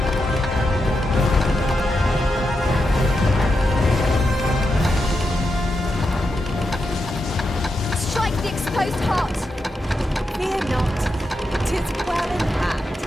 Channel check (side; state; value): both; normal; correlation 0.86